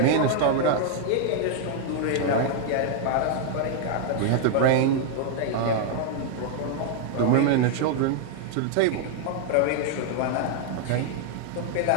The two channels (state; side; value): different; both; correlation 0.00